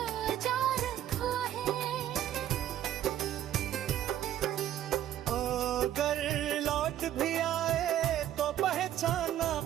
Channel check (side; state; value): left; quieter; 11.8 dB